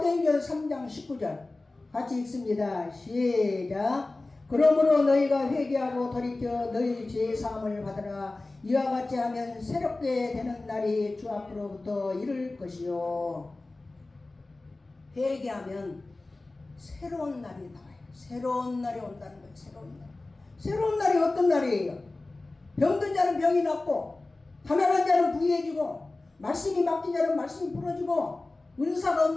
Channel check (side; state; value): right; quieter; 3.1 dB